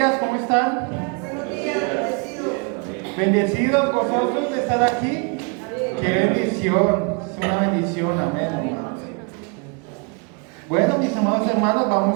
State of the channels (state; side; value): quieter; left; 34.7 dB